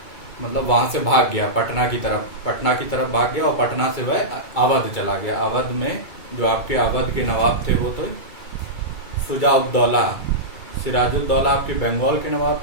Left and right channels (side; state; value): right; late; 2.3 ms